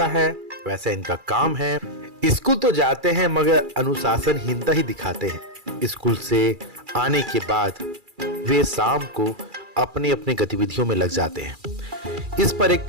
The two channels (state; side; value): late; left; 2.4 ms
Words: है वैसा इनका काम है। स्कूल तो जाते हैं मगर अनुशासनहीनता ही दिखाते हैं। स्कूल से आने के बाद वे शाम को अपनी अपनी गतिविधियों में लग जाते हैं। इस पर एक